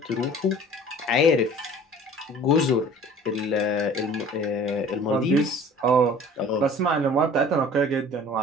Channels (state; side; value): normal; both; correlation 0.46